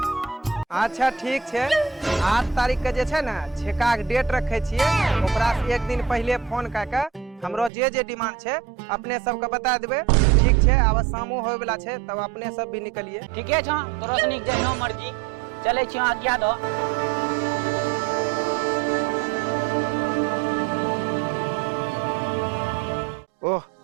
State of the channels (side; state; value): left; drops out; at 7.7 s